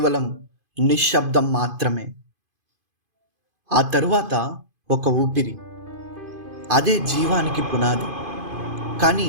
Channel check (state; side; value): late; left; 2.5 ms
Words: నిశ్శబ్దం మాత్రమే. ఆ తరువాత ఒక ఊపిరి, అదే జీవానికి పునాది. కానీ